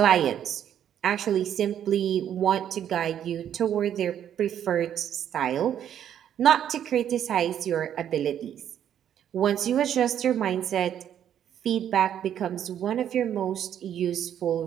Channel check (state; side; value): quieter; left; 9.9 dB